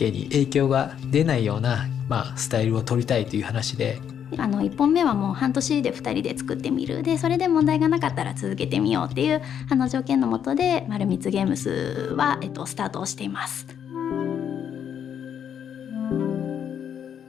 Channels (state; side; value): quieter; right; 8.7 dB